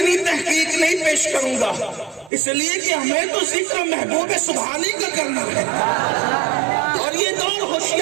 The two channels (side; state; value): left; drops out; at 2.3 s